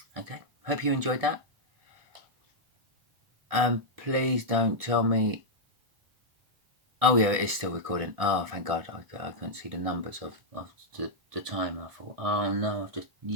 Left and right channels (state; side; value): late; left; 1.7 ms